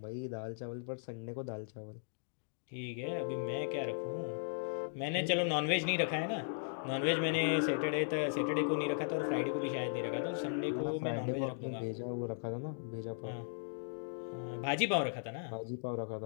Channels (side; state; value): right; silent; digital silence